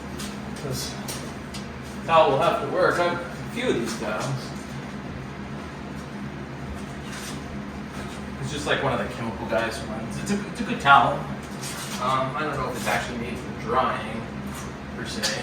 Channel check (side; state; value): both; identical; correlation 1.00